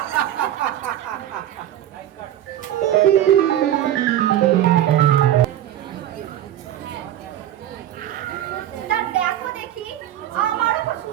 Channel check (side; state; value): left; quieter; 12.0 dB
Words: তা দেখো দেখি, আমারও তো